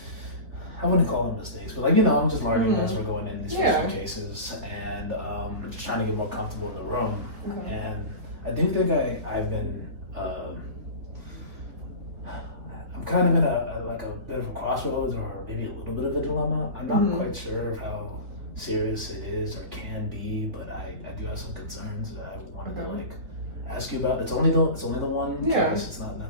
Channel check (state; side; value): late; left; 3.8 ms